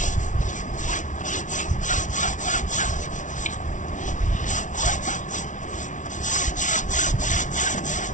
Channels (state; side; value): late; right; 0.37 ms